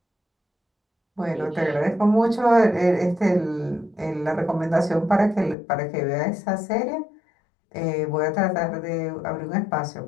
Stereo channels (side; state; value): right; drops out; at 5.6 s